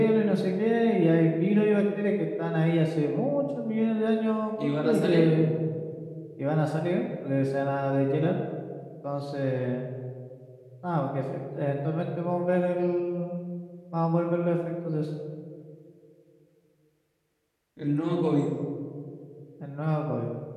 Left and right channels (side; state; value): both; identical; correlation 1.00